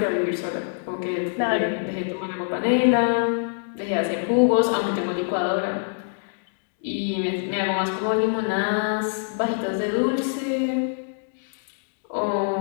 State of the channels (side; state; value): right; silent; digital silence